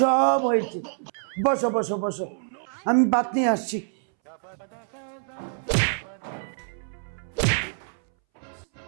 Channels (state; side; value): silent; left; 61 dB below the other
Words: হয়েছে। বসো বসো বসো, আমি ভাত নিয়ে আসছি। আসো